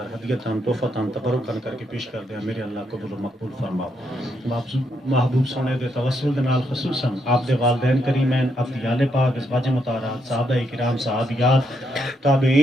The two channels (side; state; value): both; normal; correlation 0.78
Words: ہدیتاں تحفتاں تبرکاں کر کے پیش کر دیں، میرے اللہ قبول و مقبول فرما۔ محبوب سونے دے توسل دے نال خصوصاً آپ دے والدین کریمین، افضیال پاک، ازواج مطہرات، صحابہ کرام، صحابیات،